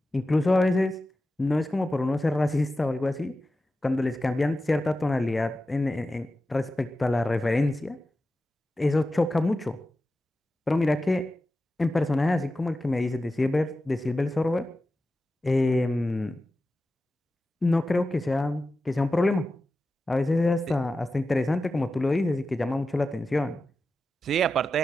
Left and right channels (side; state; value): both; normal; correlation 0.93